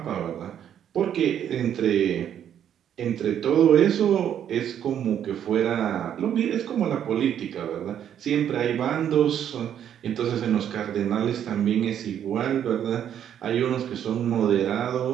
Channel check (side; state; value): left; quieter; 9.7 dB